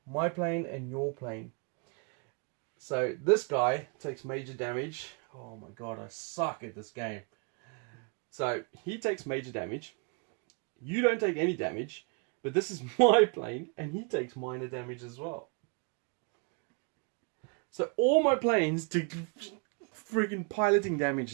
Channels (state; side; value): quieter; left; 35.7 dB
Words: my plane and your plane. So this guy takes major damage. Oh my god, I suck at this game. So he takes major damage. You don't take any damage, but this is my plane and he takes minor damage as well. So all my planes take friggin' piloting damage